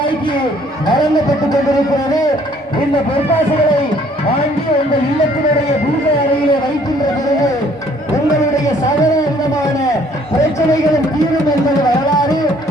வழங்கப்பட்டுக் கொண்டிருக்கிறது. இந்த பொற்காசுகளை வாங்கி உங்கள் இல்லத்தினுடைய பூஜை அறையிலே வைக்கின்ற பிறகு உங்களுடைய சகல விதமான பிரச்சனைகளும் தீரும் என்பது வரலாறு.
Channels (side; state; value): both; normal; correlation 0.60